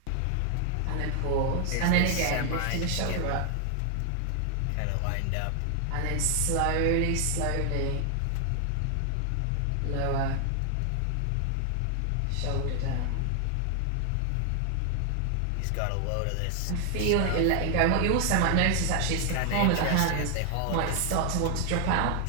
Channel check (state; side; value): different; both; correlation 0.00